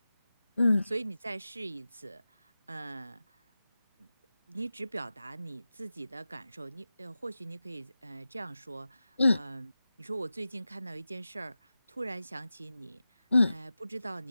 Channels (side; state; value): both; inverted; correlation -0.94